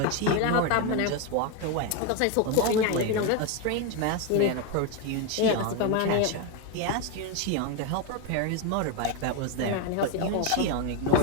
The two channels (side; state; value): both; different; correlation 0.02